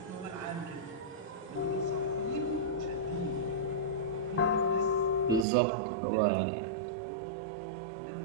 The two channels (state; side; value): drops out; left; at 5.5 s